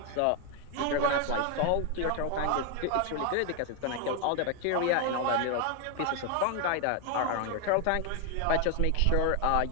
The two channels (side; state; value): both; different; correlation 0.01